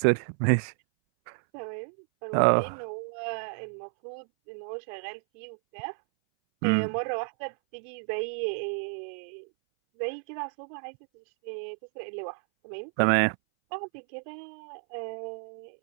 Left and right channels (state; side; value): silent; left; 57 dB below the other